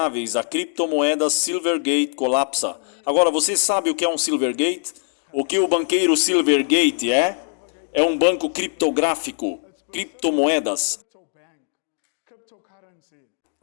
a criptomoedas Silvergate colapsa. Agora, você sabe o que é um Silvergate? O que o banqueiro Silvergate é? É um banco criptográfico, criptomoedas.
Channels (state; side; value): silent; right; digital silence